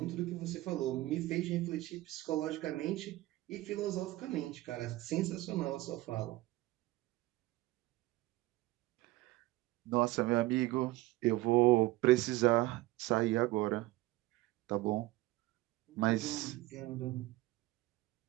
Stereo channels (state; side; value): quieter; left; 18.1 dB